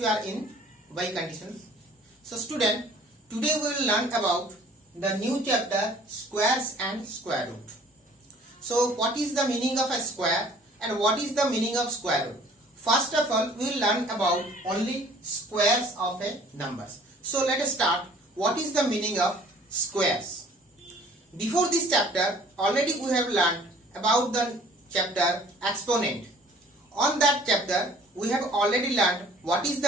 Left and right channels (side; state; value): both; normal; correlation 0.53